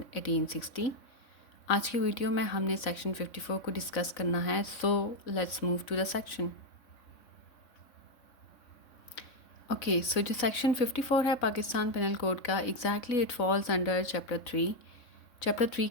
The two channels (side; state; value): right; late; 3.6 ms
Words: 1860. आज की video में हमने section 54 को discuss करना है, so let's move to the section. Okay, so जो section 54 है Pakistan penal code का, exactly it falls under chapter 3